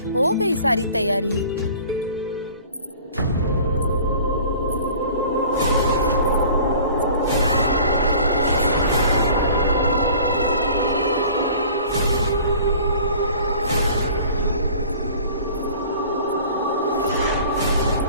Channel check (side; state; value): both; inverted; correlation -0.46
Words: हो गई सारी तैयारी?